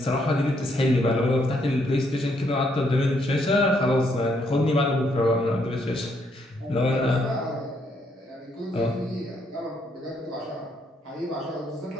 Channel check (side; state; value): both; normal; correlation 0.73